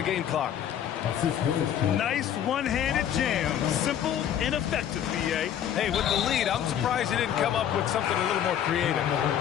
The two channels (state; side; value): quieter; right; 9.9 dB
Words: game clock. Nice one-handed jam. Simple and effective, B.A. Hey, with the lead, I'm surprised he didn't come up with something a little more creative.